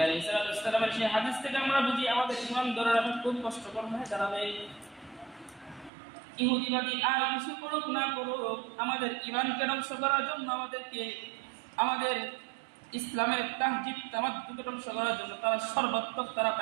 আলাইহিস সালামের সেই হাদিস থেকে আমরা বুঝি আমাদের ঈমান ধরে রাখা খুব কষ্টকর হয়ে দাঁড়াবে। ইহুদিবাদী আর কিছু করুক না করুক, আমাদের ঈমানকে ধ্বংস করার জন্য আমাদের ইসলামের তাহজিব তামাদ্দুদ ধ্বংস করার জন্য তারা সর্বাত্মক তারা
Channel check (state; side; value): drops out; left; at 5.9 s